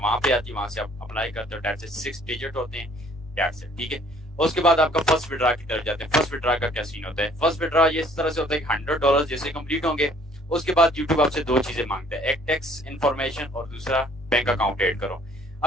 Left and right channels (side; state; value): both; normal; correlation 0.58